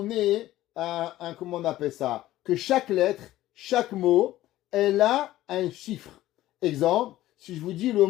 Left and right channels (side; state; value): right; quieter; 15.0 dB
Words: comment on appelle ça? Que chaque lettre, chaque mot, elle a un chiffre. Exemple, si je vous dis le